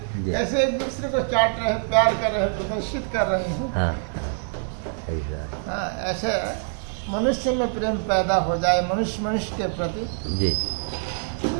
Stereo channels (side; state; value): left; silent; 62 dB below the other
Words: ऐसे एक दूसरे को चाट रहे हैं, प्यार कर रहे हैं, प्रदर्शित कर रहे हैं। हाँ ऐसा। हाँ, ऐसे मनुष्य में प्रेम पैदा हो जाए, मनुष्य मनुष्य के प्रति, जी